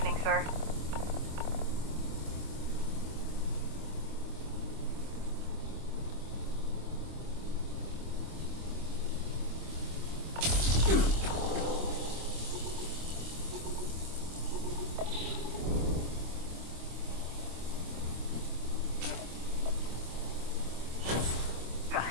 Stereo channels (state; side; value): late; left; 25 ms